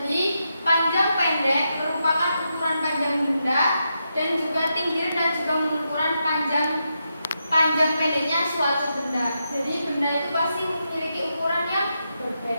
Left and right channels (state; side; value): inverted; both; correlation -0.85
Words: panjang pendek merupakan ukuran panjang benda dan juga tinggi rendah juga mengukuran panjang panjang pendeknya suatu benda. Jadi benda itu pasti memiliki ukuran yang